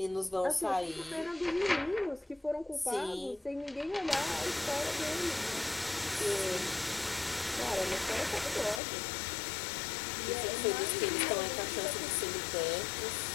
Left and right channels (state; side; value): drops out; right; at 8.8 s